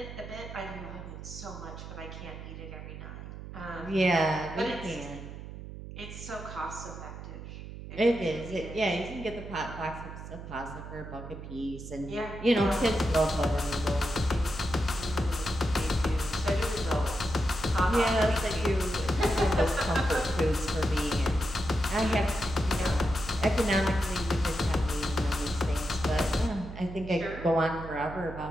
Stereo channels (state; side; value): noise; right; hum, 11 dB below the sound